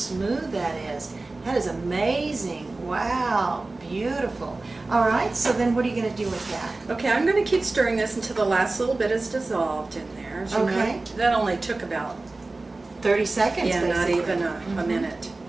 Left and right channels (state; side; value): quieter; left; 3.2 dB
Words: that is. That is amazing. Wow, beautiful. All right, so then what are you going to do with that? Okay, I'm going to keep stirring this until the last little bit is dissolved in there. As you know, Okay. that only took about 30 seconds, not basically. even a Mhm. minute.